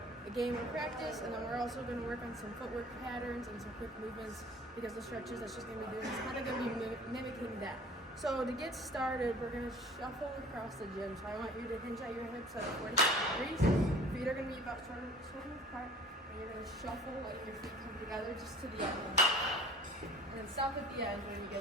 a game of practice, and then we're also going to work on some footwork patterns and some quick movements, because the stretches that she's going to be doing is kind of going to be mimicking that. So to get started, we're going to shuffle across the gym. So I want you to hinge at your hips at 45 degrees. Feet are going to be about shoulder apart, and you're going to shuffle, letting your feet come together just to the end. And then stop at the end when you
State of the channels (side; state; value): both; normal; correlation 0.47